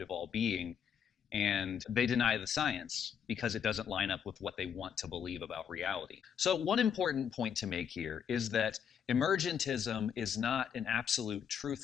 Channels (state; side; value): quieter; right; 7.9 dB